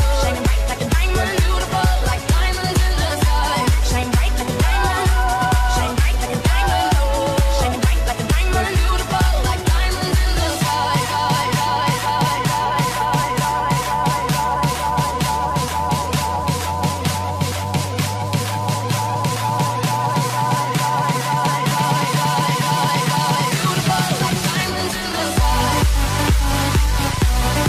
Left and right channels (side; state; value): both; identical; correlation 1.00